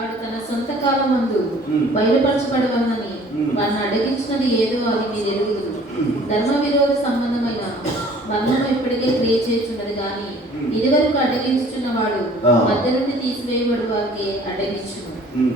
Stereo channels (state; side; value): normal; both; correlation 0.53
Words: తన సొంత కాలమందు బయలుపరచబడవలని వాడిని అడిగించినది ఏదో అది మీరు ఎరుగుదురు. ధర్మ విరోధ సంబంధమైన బంధము ఇప్పటికే క్రియ చేస్తున్నది కానీ ఇదివరకు అడ్డగించుచున్న వాడు మధ్య నుండి తీసివేయబడు వారికి అడ్డగించును.